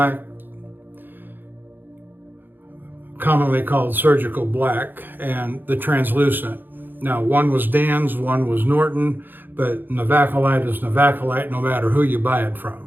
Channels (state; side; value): late; left; 0.093 ms